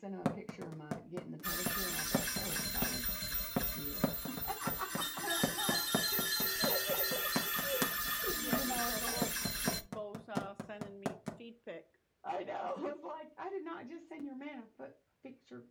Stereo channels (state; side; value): identical; both; correlation 1.00